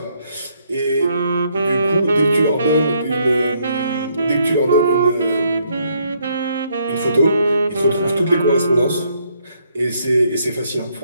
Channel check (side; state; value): both; inverted; correlation -0.71